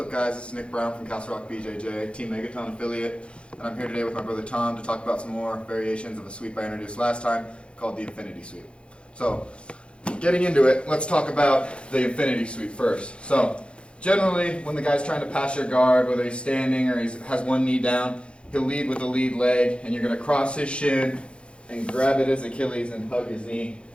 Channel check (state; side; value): late; right; 0.058 ms